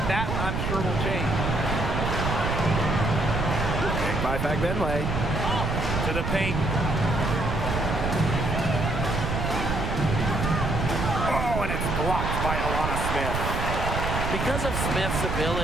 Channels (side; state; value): right; noise; rumble, 2 dB below the sound